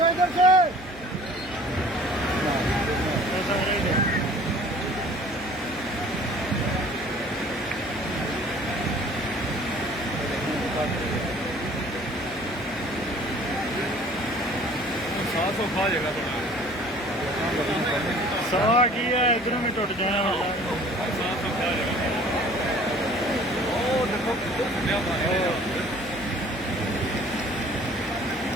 इधर से। खा जाएगा सवा की है इधरों में टूट जाने वाला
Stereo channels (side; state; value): right; noise; hum, 19 dB below the sound